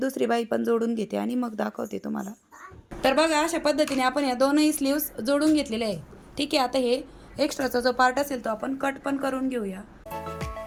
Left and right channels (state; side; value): identical; both; correlation 1.00